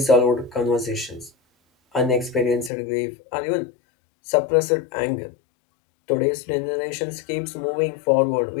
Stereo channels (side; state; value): right; drops out; at 2.7 s